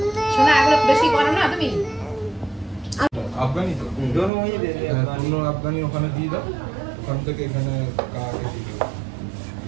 শোনা এগুলো বেশি করো না তুমি। আফগানি তো दोनों वही दे दे, दोनों আফগানি ওখানে দিয়ে দাও, ওখান থেকে এখানে কাকে দিয়ে দাও।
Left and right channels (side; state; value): left; drops out; at 4.3 s